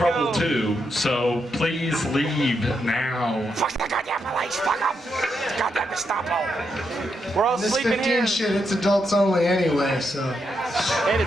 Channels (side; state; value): both; normal; correlation 0.81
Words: go. too. So please leave now. Fuck the goddamn police, fuck them. Goddamn Gestapo. We're all This sleeping 15 here. shit, it's adults only anyway, so. And